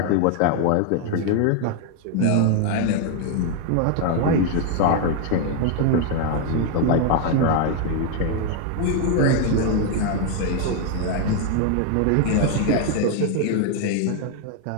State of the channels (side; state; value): both; different; correlation 0.00